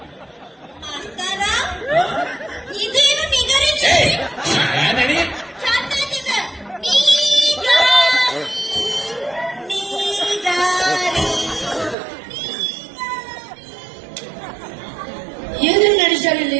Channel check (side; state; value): left; drops out; at 12.0 s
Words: ಏನೇನು ನಡೆಸ್ಯಾರ ಇಲ್ಲಿ